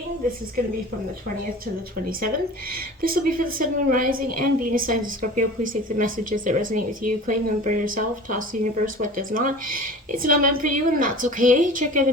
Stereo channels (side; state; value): both; normal; correlation 0.39